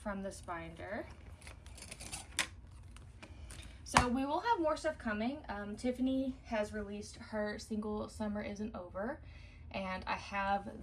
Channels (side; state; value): both; identical; correlation 1.00